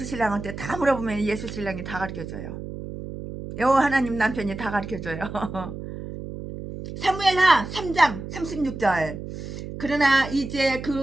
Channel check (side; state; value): right; noise; hum, 9 dB below the sound